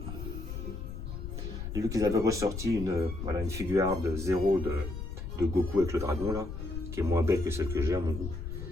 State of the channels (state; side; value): noise; left; rumble, 7 dB below the sound